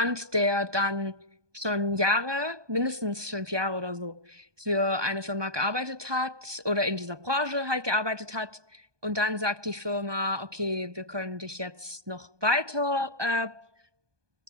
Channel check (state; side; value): late; left; 1.2 ms